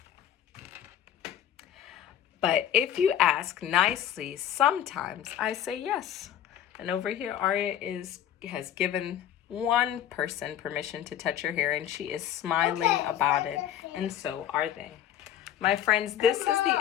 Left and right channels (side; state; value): right; quieter; 10.6 dB